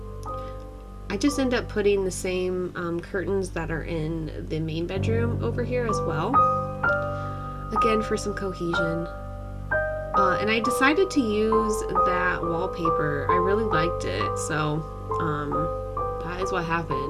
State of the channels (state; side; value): identical; both; correlation 1.00